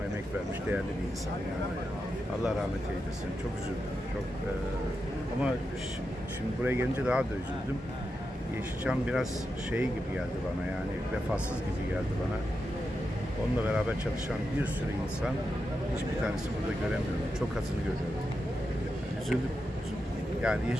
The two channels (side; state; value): both; normal; correlation 0.88